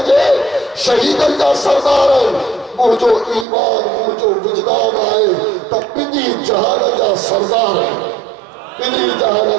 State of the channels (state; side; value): drops out; left; at 3.5 s